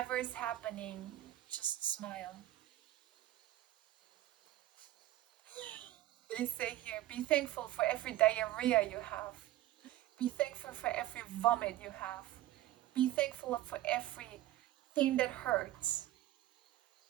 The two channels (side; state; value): left; quieter; 15.0 dB